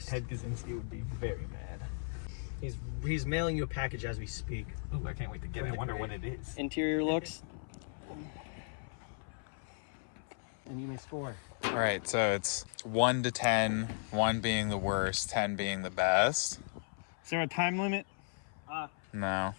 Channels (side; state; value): right; silent; 54 dB below the other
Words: Ted Kaczynski would be very mad. He's mailing you a package as we speak. Ooh, I can't wait to get it. I wonder what it is. Interior looks. And you may score. All right, so it's 1 to 10, 1 being the worst, 10 being the best. Is there a time limit? No.